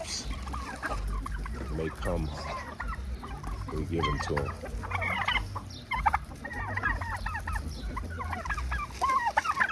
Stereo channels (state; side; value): identical; both; correlation 1.00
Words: may come, we give them to them.